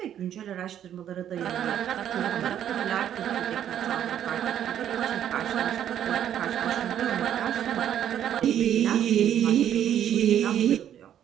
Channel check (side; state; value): left; quieter; 10.2 dB